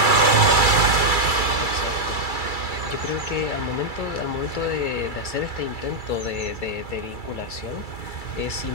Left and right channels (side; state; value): right; late; 2.3 ms